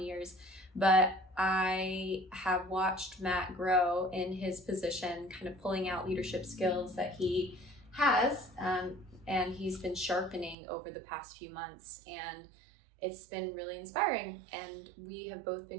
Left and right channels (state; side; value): drops out; left; at 10.6 s